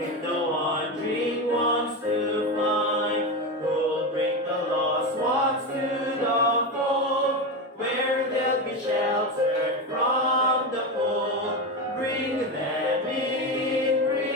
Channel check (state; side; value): normal; both; correlation 0.17